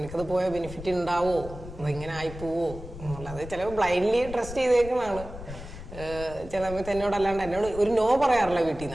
പോയാൽ ബെനിഫിറ്റ് ഉണ്ടാവോ, ഇങ്ങനെ ആയിപ്പോവോ എന്നുള്ളത് ചിലപ്പോൾ ബ്ലൈൻഡ്ലി ട്രസ്റ്റ് ചെയ്തേക്കുന്നതാണ്. ചില സമയത്ത് എന്നോട് ഒരു നോ പറയാറില്ല വീട്ടിൽ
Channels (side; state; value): left; noise; rumble, 12 dB below the sound